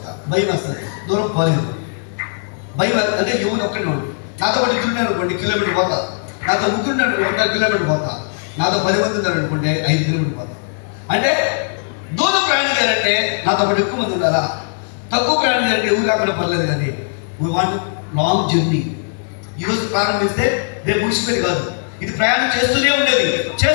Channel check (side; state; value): right; silent; digital silence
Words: భయం వస్తుంది, దూరం పోలేదు. భయం అంటే ఎవరు ఒక్కడే ఉన్నాడు. నాతో పాటు ఇద్దరు అనుకోండి, కిలోమీటర్ పోతా. నాతో ముగ్గురు 2 కిలోమీటర్ పోతా. నాతో 10 మంది ఉన్నారు అనుకోండి, 5 కిలోమీటర్ పోతా. అంటే దూరం ప్రయాణం చేయాలంటే నాతో పాటు ఎక్కువ మంది ఉండాలా. తక్కువ ప్రయాణం చేయాలంటే ఎవరు కాకుండా పర్లేదు. కానీ వీ వాంట్ లాంగ్ జర్నీ. ఈరోజు ప్రారంభిస్తే రేపు ముగిసిపోయి కాదు. ఇది ప్రయాణం చేస్తూనే ఉండేది.